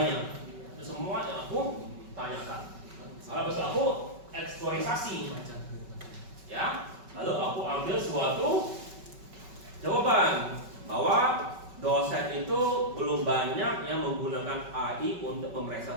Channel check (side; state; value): left; late; 5.3 ms